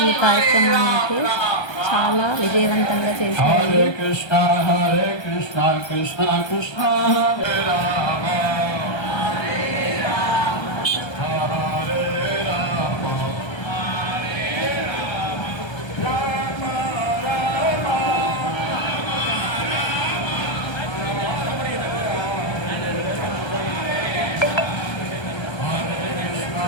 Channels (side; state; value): right; late; 1.3 ms